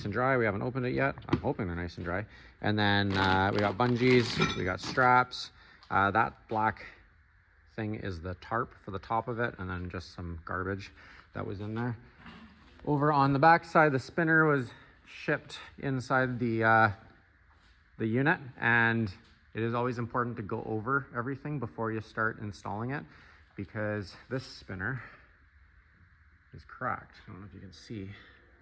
and dry. We haven't opened it yet. I'm hoping they're nice and dry. And then we got bungees, we got straps. That black thing is the tarp for the top of it, and then just some garbage that was in there. Over on the back side, the spinner was shipped inside the unit, and it is always important to go over everything before you start installing it, because this spinner is cracked. I don't know if you can see.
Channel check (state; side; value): identical; both; correlation 1.00